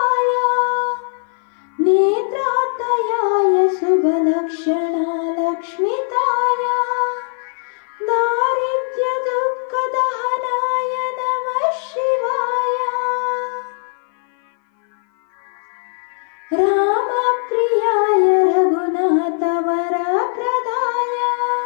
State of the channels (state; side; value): silent; right; 57 dB below the other